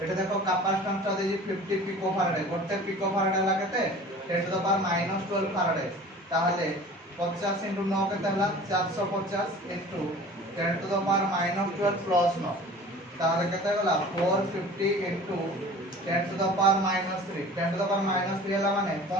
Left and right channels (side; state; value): both; normal; correlation 0.43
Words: एटा देखो कैपेसिटेंस ता देजी 50 पिकोफाराड, गोटे पिकोफाराड हला केते 10 टू द पावर -12 फाराड। ताहले 50 इनटू 9 केते हला 450 into 10 to the power -12 plus 9। ताहले केते हला 450 into 10 to the power -3। 10 to the power -3 हला माने